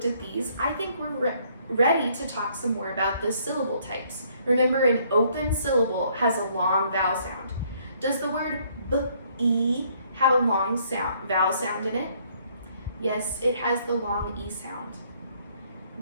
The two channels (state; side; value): inverted; both; correlation -0.65